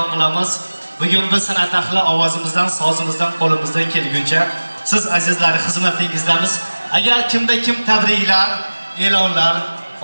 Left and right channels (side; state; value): both; inverted; correlation -1.00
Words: qilamiz. Bugun biz san'at ahli ovozimizdan, sozimizdan, qo'limizdan kelguncha siz azizlar xizmatingizdamiz. Agar kimda kim tabriklar, e'lonlar,